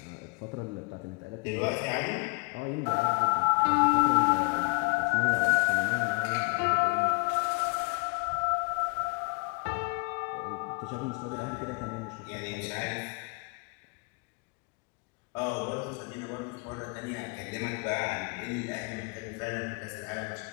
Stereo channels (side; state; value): right; quieter; 32.1 dB